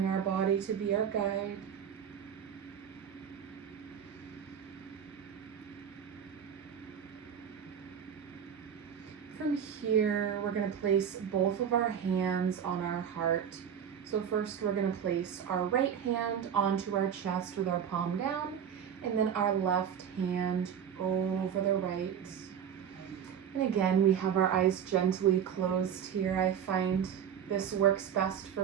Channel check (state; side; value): quieter; left; 8.4 dB